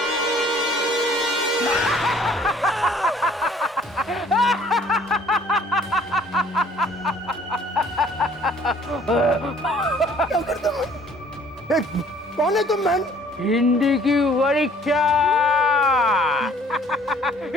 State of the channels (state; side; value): normal; both; correlation 0.57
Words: क्या करता मैं? कौन है तुम मैन? हिंदी की परीक्षा।